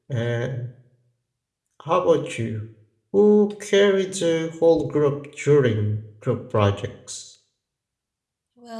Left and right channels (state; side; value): identical; both; correlation 1.00